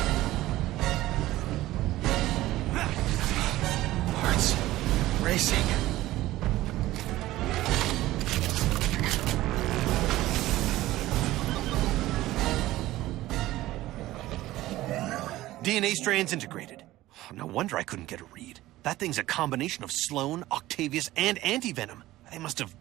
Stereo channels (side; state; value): left; quieter; 16.4 dB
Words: Heart's racing. DNA strands integrated. No wonder I couldn't get a read. That thing's a combination of Sloan, Octavius, and Antivenom. They must have